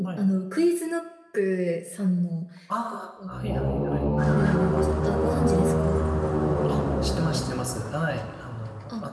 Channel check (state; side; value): identical; both; correlation 1.00